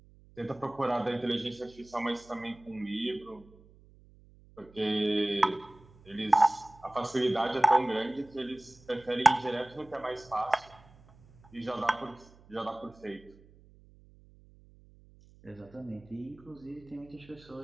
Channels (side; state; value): right; noise; hum, 25 dB below the sound